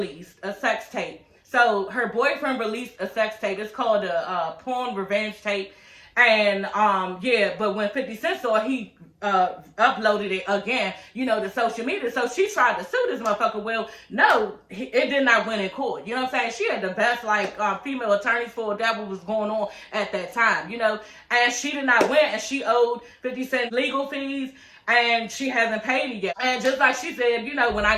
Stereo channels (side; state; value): both; identical; correlation 1.00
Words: a sex tape. So her boyfriend released a sex tape. It's called a porn revenge tape. And yeah, but when 50 Cent saw it, he uploaded it again, you know, to social media. So she tried to sue this motherfucker. Well, no, it did not win in court. You know what I'm saying? She had the best like female attorneys for that what was going on at that time, you know. And she did not win, and she owed 50 Cent legal fees, and she hasn't paid it yet. And just like she said, you know, when I